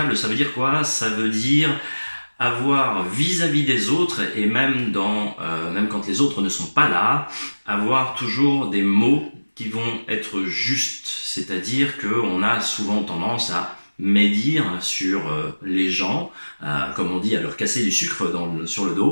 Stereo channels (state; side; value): inverted; both; correlation -1.00